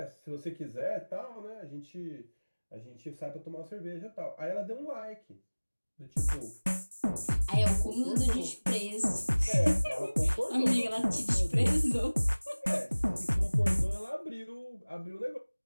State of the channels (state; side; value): inverted; both; correlation -1.00